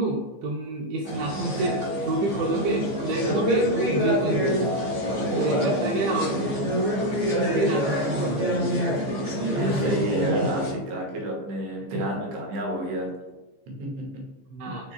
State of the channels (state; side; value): late; left; 15 ms